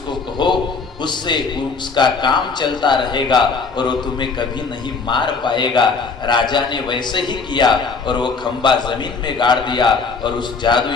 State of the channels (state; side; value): quieter; right; 4.7 dB